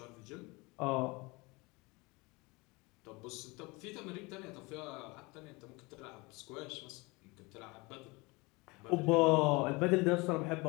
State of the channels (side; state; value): right; quieter; 25.4 dB